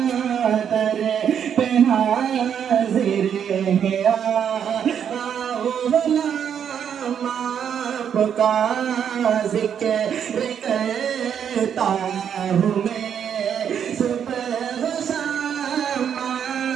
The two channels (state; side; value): quieter; left; 8.3 dB